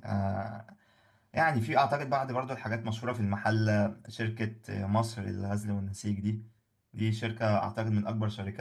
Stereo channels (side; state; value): both; identical; correlation 1.00